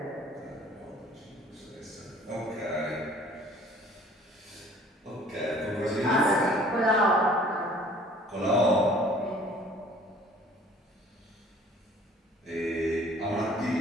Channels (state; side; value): normal; both; correlation 0.52